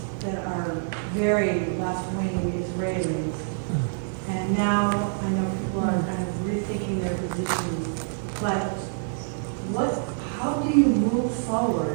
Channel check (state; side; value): silent; left; 61 dB below the other